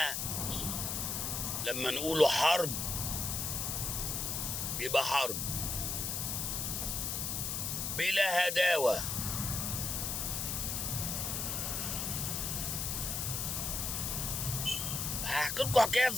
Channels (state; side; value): noise; left; hiss, 1 dB below the sound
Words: لما نقوله حرب يبقى حرب بلا هداوة. هحكي لكم حكاية